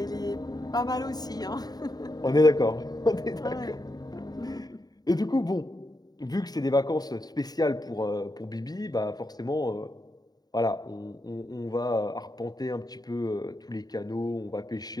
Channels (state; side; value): late; right; 0.19 ms